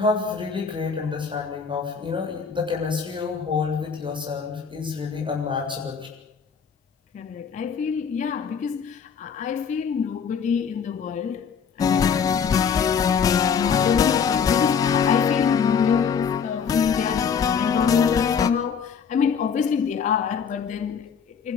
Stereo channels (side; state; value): right; quieter; 6.6 dB